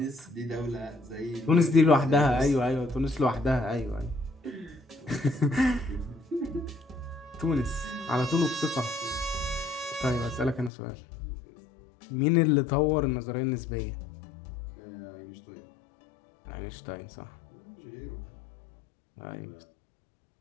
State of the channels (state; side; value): drops out; right; at 10.7 s